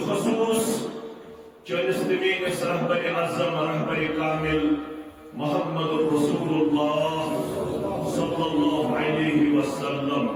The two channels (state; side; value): identical; both; correlation 1.00